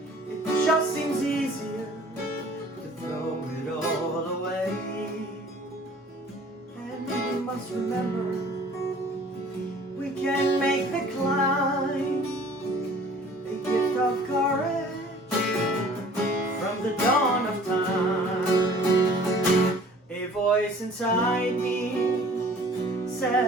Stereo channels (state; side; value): normal; both; correlation 0.50